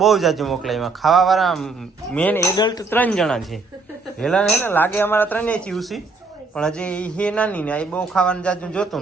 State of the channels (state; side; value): quieter; left; 3.8 dB